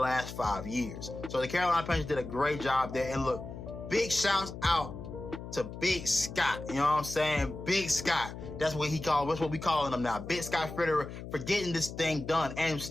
5 years. So the Carolina Panthers did a great job there. And look, big shouts out to Big Scott. You know what I'm saying? Big Scott. That's what we calling him now. Big Scott Fitterer for getting this thing done and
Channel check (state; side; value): noise; left; hum, 10 dB below the sound